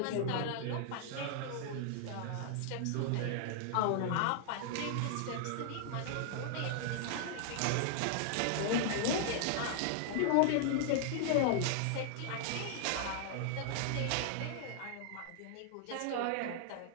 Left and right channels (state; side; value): different; both; correlation -0.01